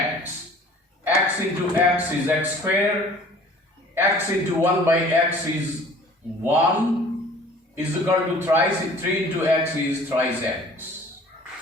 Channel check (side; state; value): both; normal; correlation 0.49